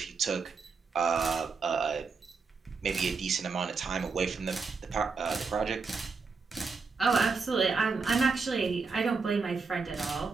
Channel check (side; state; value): left; quieter; 4.7 dB